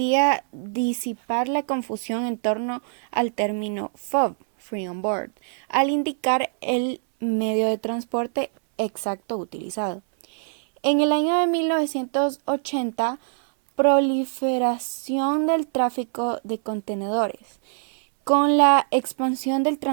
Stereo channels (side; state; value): left; silent; 63 dB below the other